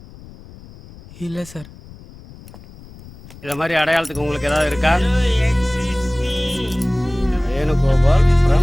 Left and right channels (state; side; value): noise; left; rumble, 20 dB below the sound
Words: இல்லை சார். இதை மாதிரி அடையாளத்துக்கு உங்களுக்கு ஏதாவது இருக்கா? Venugopal